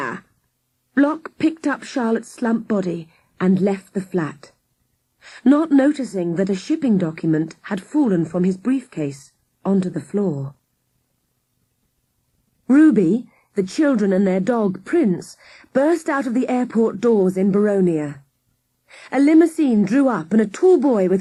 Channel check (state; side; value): identical; both; correlation 1.00